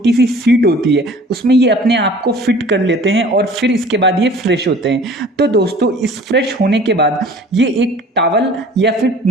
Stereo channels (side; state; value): both; normal; correlation 0.48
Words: सी सीट होती है, उसमें ये अपने आप को फिट कर लेते हैं और फिर इसके बाद ये फ्रेश होते हैं। तो दोस्तों इस फ्रेश होने के बाद ये एक टॉवल या फिर